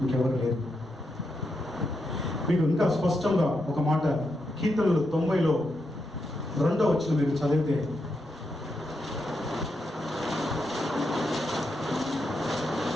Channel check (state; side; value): normal; both; correlation 0.84